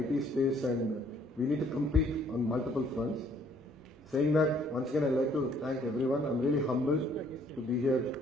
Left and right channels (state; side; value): normal; both; correlation 0.63